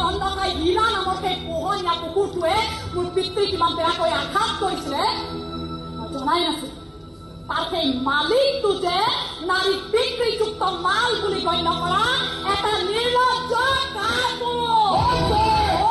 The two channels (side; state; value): both; identical; correlation 1.00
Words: অন্ধকাই হীৰা নামৰ সেই পোহনীয়া কুকুৰটোৱে মোৰ পিতৃক কিমান বেয়াকৈ আঘাত কৰিছিলে মই জনাই নাছিলো তাৰ সেই মালিকটো যে নাৰী বিক্ৰীযুক্ত মাল বুলি গণ্য কৰা এটা নিৰ্লজ্জ